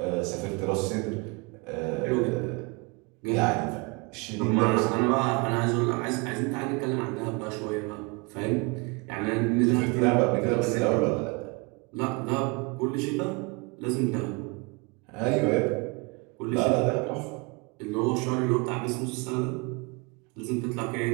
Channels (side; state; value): left; quieter; 29.0 dB